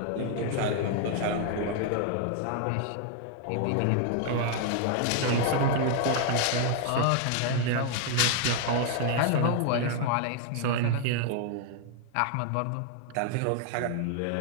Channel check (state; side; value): different; both; correlation 0.00